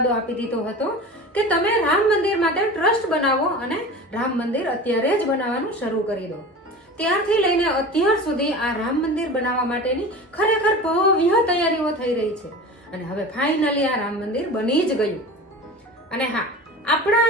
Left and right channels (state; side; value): normal; both; correlation 0.34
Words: આપી દીધો હતો કે તમે રામ મંદિર માટે ટ્રસ્ટ બનાવો અને રામ મંદિર અત્યારે જ બનાવવાનું શરૂ કરી દો. ત્યારથી લઈને અત્યાર સુધી આ રામ મંદિર બનાવવા માટેની ખરેખર ભવ્ય તૈયારીઓ થઈ રહી છે. અને હવે ફાઇનલી આ રામ મંદિર બની જ ગયું. અને હા, આપણા